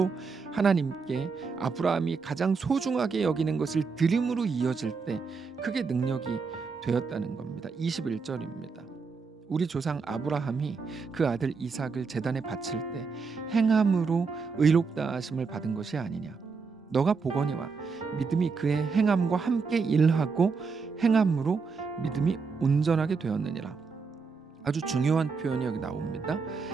하나님께 아브라함이 가장 소중하게 여기는 것을 드림으로 이어질 때 그게 능력이 되었다는 겁니다. 21절입니다. 우리 조상 아브라함이 그 아들 이삭을 제단에 바칠 때 행함으로 의롭다 하심을 받은 것이 아니냐. 너가 보거니와 믿음이 그의 행함과 함께 일하고 행함으로 믿음이 온전하게 되었느니라. 아주 중요한 표현이 여기 나옵니다.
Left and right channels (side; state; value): left; quieter; 4.9 dB